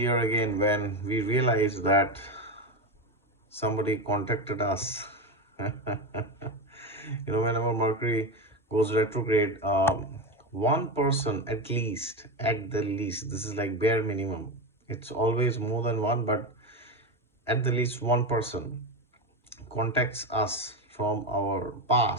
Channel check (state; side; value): normal; both; correlation 0.16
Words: again when we realize that somebody contacted us. Whenever Mercury goes retrograde, one person at the least, this is like bare minimum. It's always more than one, but at the least one person contacts us from our